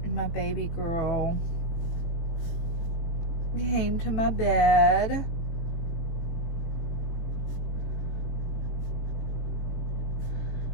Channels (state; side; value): late; right; 18 ms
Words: My baby girl came to my bed.